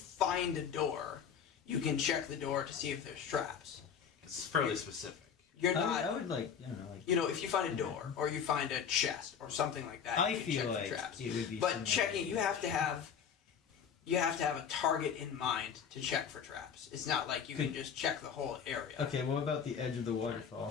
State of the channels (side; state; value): right; quieter; 7.4 dB